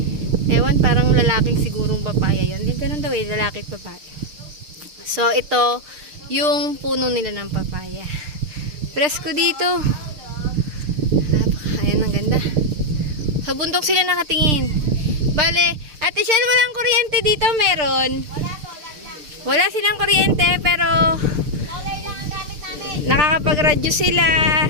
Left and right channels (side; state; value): left; late; 6.6 ms